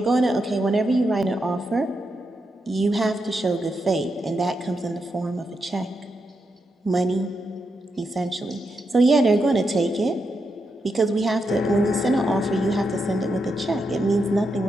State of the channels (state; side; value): normal; both; correlation 0.84